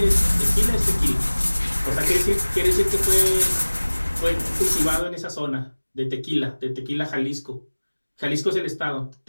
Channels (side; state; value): both; inverted; correlation -1.00